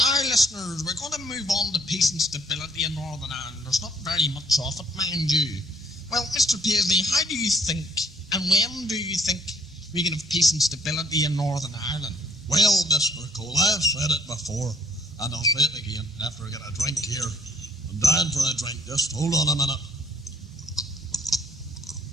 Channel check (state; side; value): normal; both; correlation 0.63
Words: Listeners, we're going to move on to peace and stability in Northern Ireland. There's not very much of it, mind you. Well, Mr. Paisley, how do you think, and when do you think we can have peace and stability in Northern Ireland? Well, Mr. Cole, I've said it before, and I'll say it again after I get a drink here. I'm dying for a drink. Just hold on a minute.